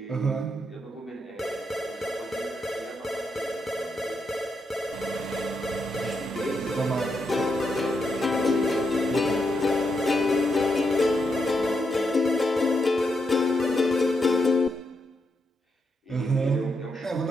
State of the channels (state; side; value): normal; both; correlation 0.82